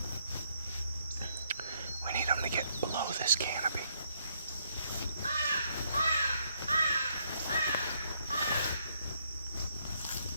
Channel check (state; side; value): inverted; both; correlation -0.72